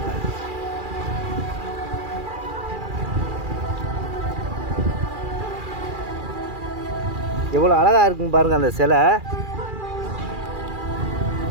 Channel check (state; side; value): late; left; 2.4 ms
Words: எவ்வளோ அழகாக இருக்குன்னு பாருங்கள். அந்த சிலை